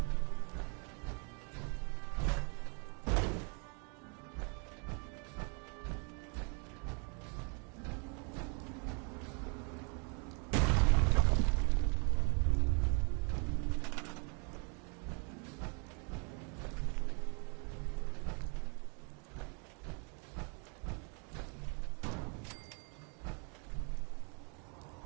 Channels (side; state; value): left; quieter; 36.8 dB